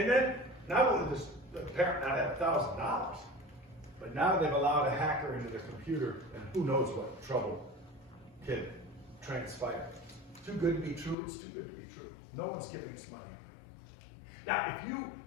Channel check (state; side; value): drops out; right; at 11.2 s